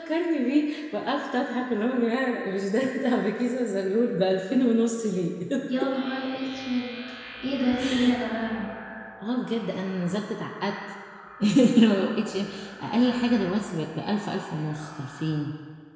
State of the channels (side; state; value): both; identical; correlation 1.00